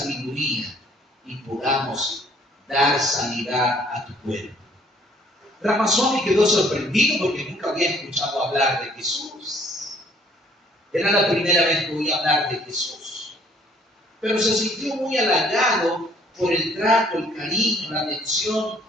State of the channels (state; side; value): normal; both; correlation 0.60